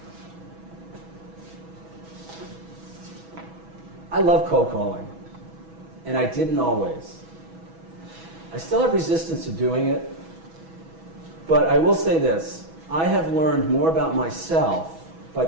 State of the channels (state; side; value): late; left; 6.1 ms